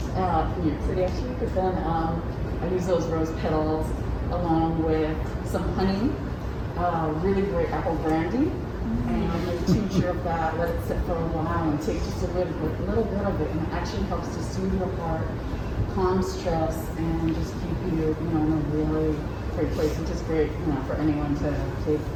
York City actually. But then I use those rose petals along with some honey, really great apple brandy, and a tincture of that. Let it sit for a while and take just a little bit of it, and it actually helps to soothe your heart, calm stress and just keep you, you know, in a really great place, which is great, you know, for anyone to take,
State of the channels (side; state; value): both; identical; correlation 1.00